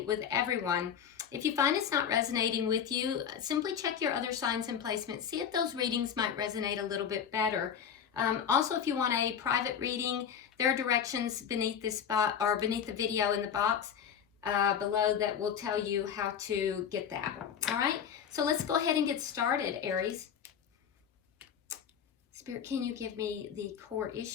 with everyone. If you find it's not resonating with you, simply check your other signs and placements. See if those readings might resonate a little bit better. Also, if you want a private reading, there are directions beneath this spot or beneath the video in the box below that will tell you how to get that. All right, so let's go ahead and get started, Aries. Spirit, can you give me the core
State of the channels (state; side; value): quieter; right; 8.0 dB